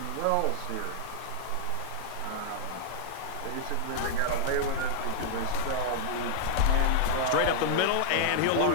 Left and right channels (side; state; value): both; different; correlation 0.00